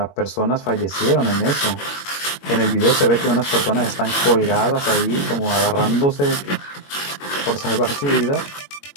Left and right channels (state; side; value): late; right; 21 ms